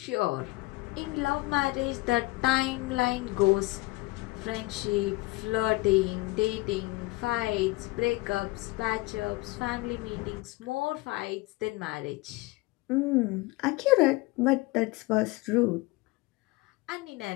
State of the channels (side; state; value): right; quieter; 22.2 dB